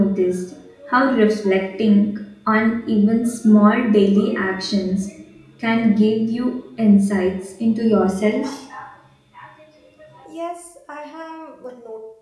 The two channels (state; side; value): identical; both; correlation 1.00